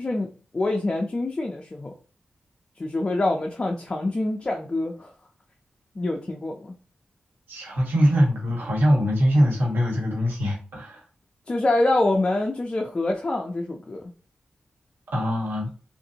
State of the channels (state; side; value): normal; both; correlation 0.94